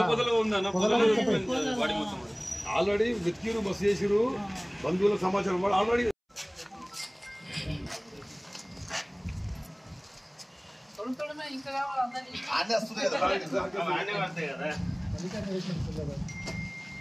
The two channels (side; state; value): both; identical; correlation 1.00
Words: ఆల్రెడీ వెతికిరు బస్సు చేసిరు బంధువుల సమాచారం వాడు ఆల్రెడీ